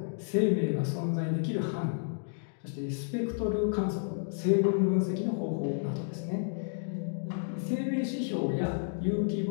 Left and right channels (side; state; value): right; silent; digital silence